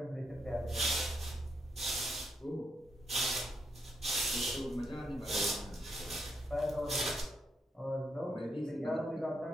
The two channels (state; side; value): normal; both; correlation 0.78